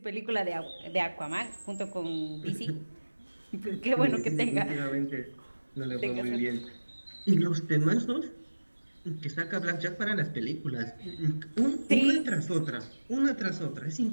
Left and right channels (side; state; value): both; inverted; correlation -1.00